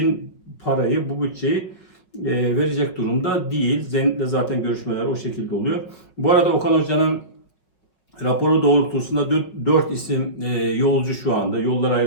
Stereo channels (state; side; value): late; right; 5.5 ms